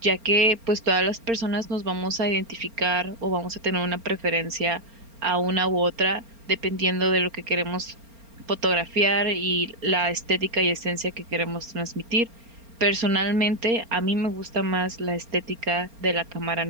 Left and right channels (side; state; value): left; late; 4.3 ms